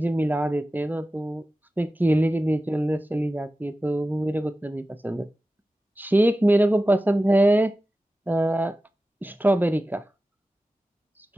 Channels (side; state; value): both; normal; correlation 0.95